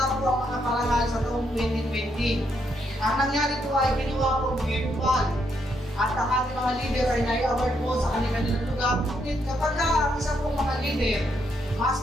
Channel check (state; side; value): normal; both; correlation 0.76